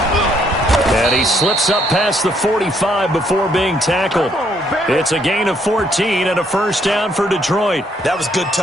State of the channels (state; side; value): normal; both; correlation 0.70